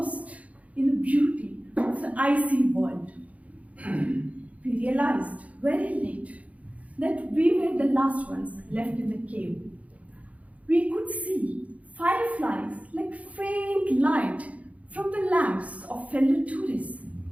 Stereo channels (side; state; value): left; late; 0.068 ms